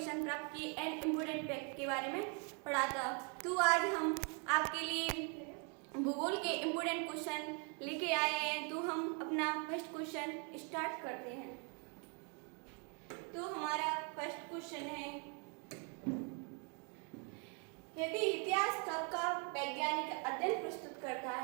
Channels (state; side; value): quieter; left; 37.0 dB